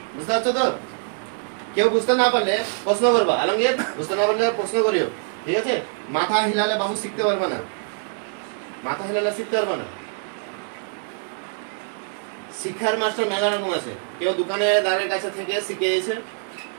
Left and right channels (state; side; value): silent; left; 56 dB below the other